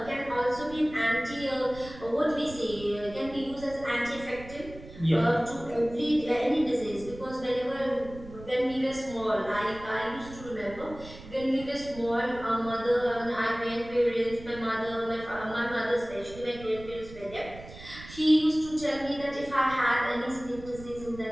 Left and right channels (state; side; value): noise; right; rumble, 16 dB below the sound